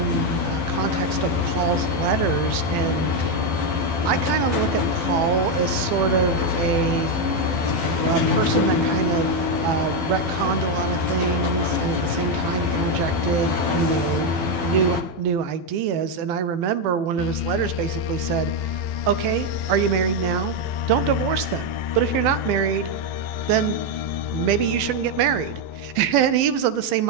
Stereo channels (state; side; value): late; left; 12 ms